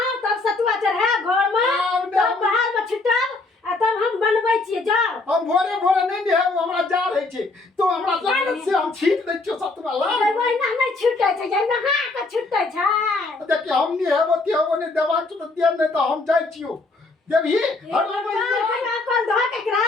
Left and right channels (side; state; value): right; quieter; 3.4 dB